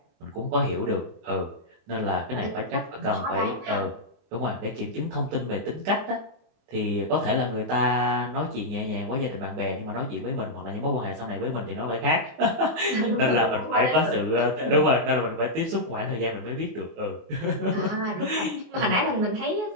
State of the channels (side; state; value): left; late; 24 ms